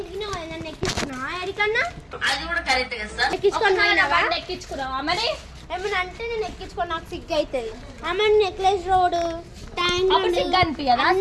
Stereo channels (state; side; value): identical; both; correlation 1.00